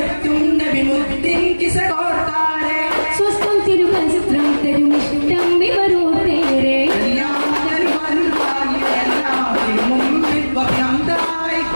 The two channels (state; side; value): inverted; both; correlation -1.00